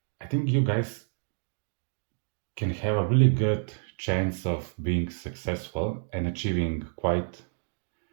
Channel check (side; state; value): left; silent; digital silence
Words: I think you guys can have a really good chance of being successful and achieving quite